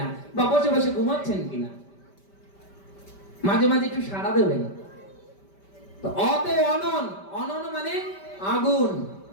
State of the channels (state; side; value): late; right; 5.1 ms